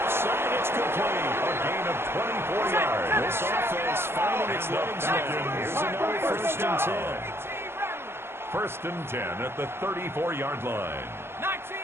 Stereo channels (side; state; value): left; late; 0.12 ms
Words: side, it's complete. A gain of 24 yards. This offense finding its legs now. Here's another first and 10. First and 10 at the 34-yard line. 19